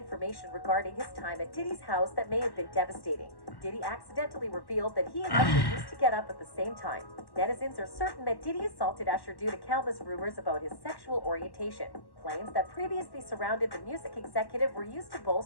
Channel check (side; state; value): right; late; 1.1 ms